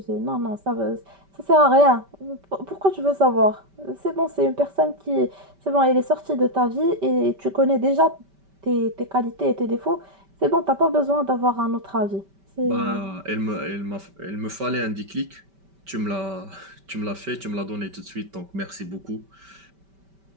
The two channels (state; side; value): late; left; 5.2 ms